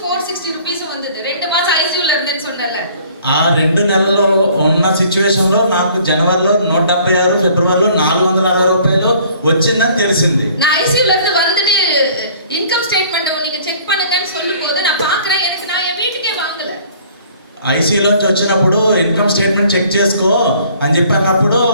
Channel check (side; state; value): both; inverted; correlation -0.55